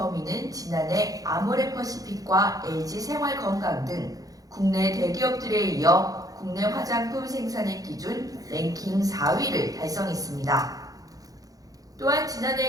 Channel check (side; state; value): left; late; 0.17 ms